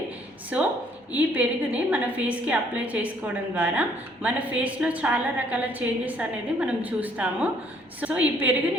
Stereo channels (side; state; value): both; normal; correlation 0.63